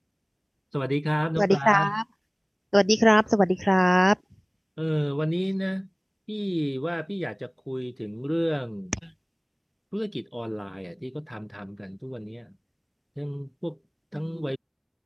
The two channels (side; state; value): both; identical; correlation 1.00